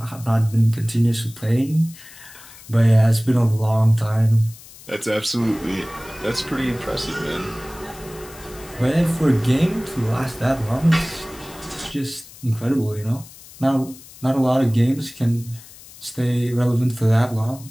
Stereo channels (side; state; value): left; noise; hiss, 20 dB below the sound